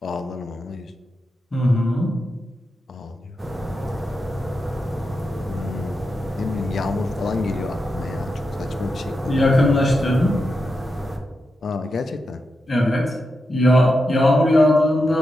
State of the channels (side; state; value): both; normal; correlation 0.88